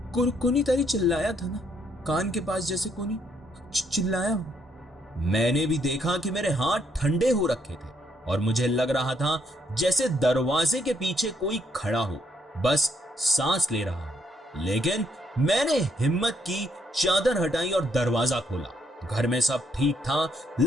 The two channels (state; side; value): normal; both; correlation 0.72